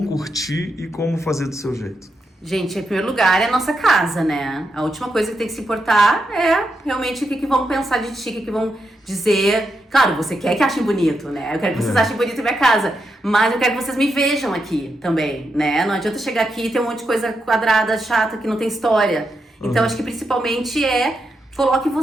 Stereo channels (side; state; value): both; normal; correlation 0.84